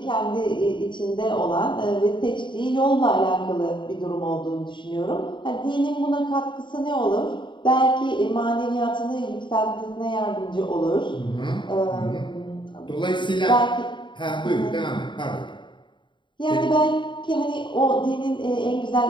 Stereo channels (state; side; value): late; right; 0.23 ms